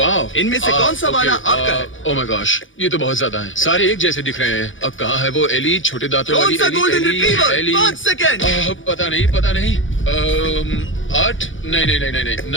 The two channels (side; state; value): right; late; 0.57 ms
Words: इनमें से कौन सा वाला आपका है? ओह माय गॉश, ये तो बहुत ज्यादा है। सारे एक जैसे दिख रहे हैं। अब कहाँ है वो एली, छोटे दांतों कौन वाली सा Ellie? Golden retriever? Ellie. 5 second. पता नहीं, पता नहीं। 8, नहीं,